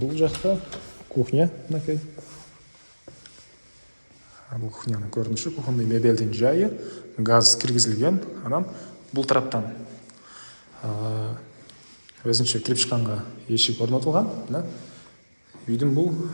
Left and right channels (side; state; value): both; inverted; correlation -1.00